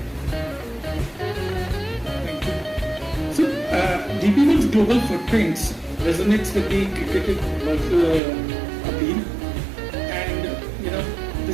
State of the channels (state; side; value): drops out; left; at 8.2 s